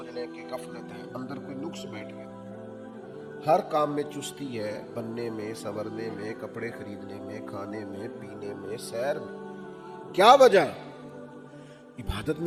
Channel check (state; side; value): identical; both; correlation 1.00